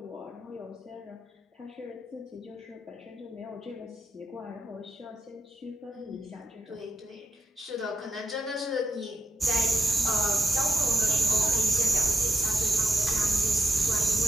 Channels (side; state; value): both; normal; correlation 0.86